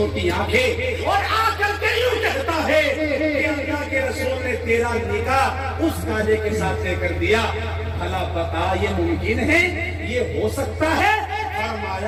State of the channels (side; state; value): both; identical; correlation 1.00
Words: آنکھیں، اور آ کر کے یوں کہتا ہے کہ اللہ کے رسول نے تیرا نکاح اس کالے کے ساتھ طے کر دیا، بھلا بتا یہ ممکن ہے، یہ ہو سکتا ہے؟